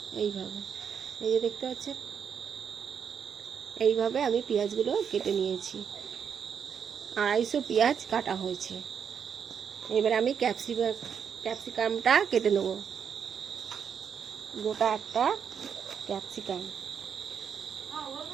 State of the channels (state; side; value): quieter; left; 7.4 dB